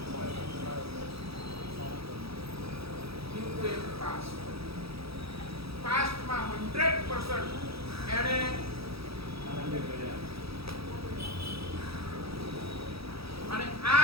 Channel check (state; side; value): late; left; 0.77 ms